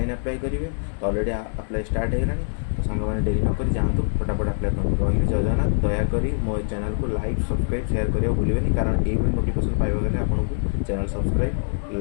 अप्लाई करेंगे। तो ऑलरेडी अप्लाई स्टार्ट होगा। तो सांग मैंने डेरी नक जातु फटाफट अप्लाई कर रही। जय जगन्नाथ। दयाकोरी मो चैनल को लाइक सब्सक्राइब शेयर करने भूलें कारण ये नोटिफिकेशन पाइबा आपको channel subscribe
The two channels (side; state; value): right; silent; digital silence